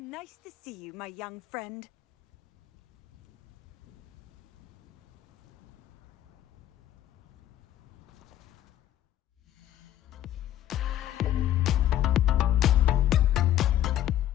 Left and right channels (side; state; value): right; quieter; 12.3 dB